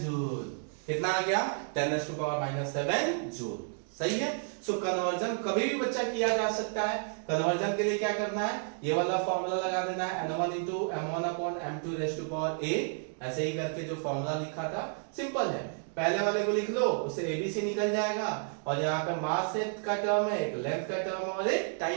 जूल, कितना आ गया, 10⁻⁻7 जूल, सही है। सो कन्वर्जन कभी भी बच्चा किया जा सकता है। कन्वर्जन के लिए क्या करना है, ये वाला फॉर्मूला लगा देना है, n1 × m1/m2⁴, ऐसे ही करके जो फॉर्मूला लिखा था सिंपल है, पहले वाले को लिख लो, उससे एबीसी निकल जाएगा, और यहाँ पे मास का टर्म है, एक लेंथ का टर्म है और एक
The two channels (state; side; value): silent; left; 57 dB below the other